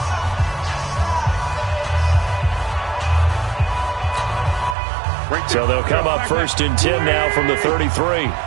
So they'll come up 1st and 10 now from the 33.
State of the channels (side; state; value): left; drops out; at 4.8 s